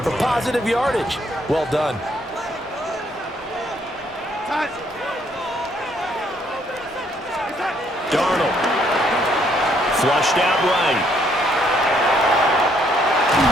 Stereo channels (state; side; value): normal; both; correlation 0.68